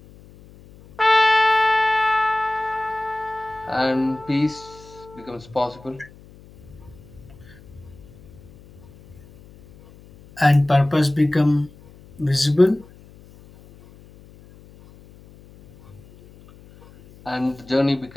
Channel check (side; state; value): left; noise; hum, 23 dB below the sound